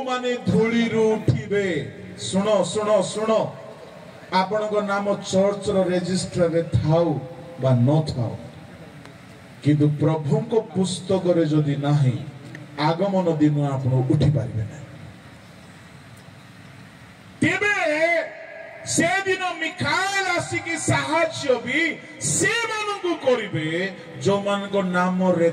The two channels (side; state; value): both; identical; correlation 1.00